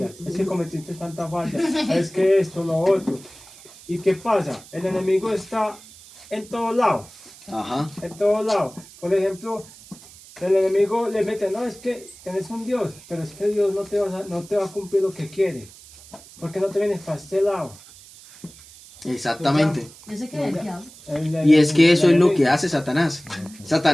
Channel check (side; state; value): right; noise; hiss, 21 dB below the sound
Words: es que cometiste tanta falla, es que esto, lo otro. ¿Y qué pasa? El enemigo está en todos lados. Ajá. En todos lados. Por ejemplo, el enemigo le mete, no, es que tenés un Dios, pero es que Dios no te va a cumplir lo que quiere. Porque no te vienes para este lado. Exactamente. Ese que el diablo. Y es que eso es lo que hace Satanás.